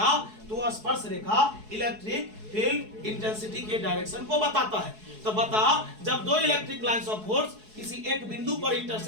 तो वह स्पर्श रेखा इलेक्ट्रिक फील्ड इंटेंसिटी के डायरेक्शन को बताता है। तो बता, जब 2 इलेक्ट्रिक लाइंस ऑफ फोर्स किसी एक बिंदु पर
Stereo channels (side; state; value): left; late; 4.7 ms